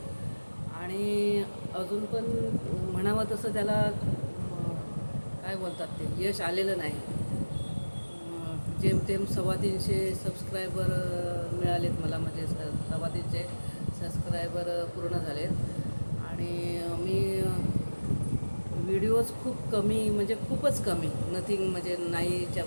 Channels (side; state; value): both; inverted; correlation -1.00